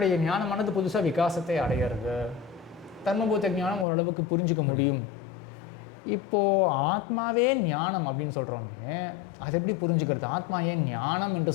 ஞானமானது புதுசாக விகாசத்தை அடையிறது. தர்மபூத ஞானம் ஓரளவுக்கு புரிஞ்சிக்க முடியும். இப்போது ஆத்மாவே ஞானம் அப்படின்னு சொல்கிறோமே, அதை எப்படி புரிஞ்சுக்கிறது? ஆத்மா ஏன் ஞானம் என்று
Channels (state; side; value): drops out; right; at 3.9 s